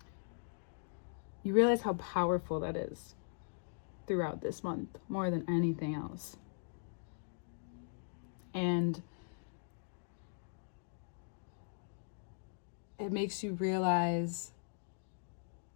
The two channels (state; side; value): silent; right; digital silence